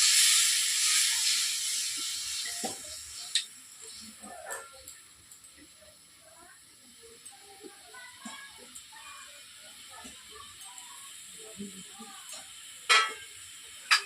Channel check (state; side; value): identical; both; correlation 1.00